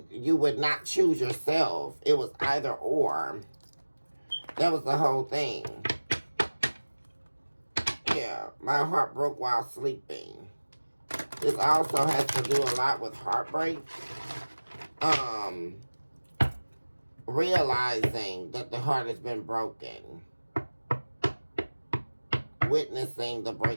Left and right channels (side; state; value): both; inverted; correlation -1.00